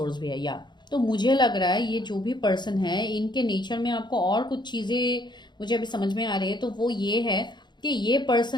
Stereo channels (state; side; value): late; right; 0.21 ms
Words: भी है या, तो मुझे लग रहा है ये जो भी पर्सन है इनके नेचर में आपको और कुछ चीजें मुझे अभी समझ में आ रही है। तो वो ये है कि ये